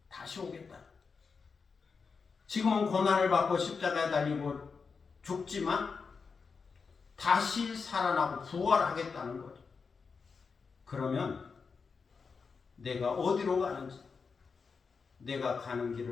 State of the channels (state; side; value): quieter; right; 5.2 dB